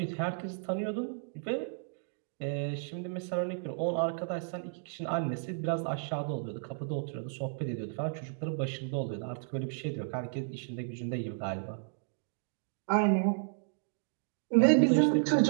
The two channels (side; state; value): left; silent; digital silence